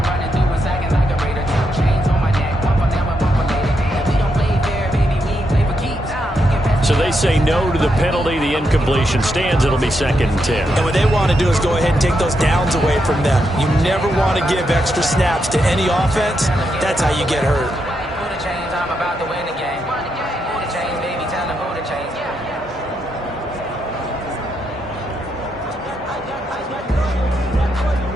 So they say no to the penalty. The incompletion stands. It'll be 2nd and 10. And what they want to do is go ahead and take those downs away from them. You never want to give extra snaps to any offense. That's how you get hurt.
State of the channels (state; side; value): normal; both; correlation 0.81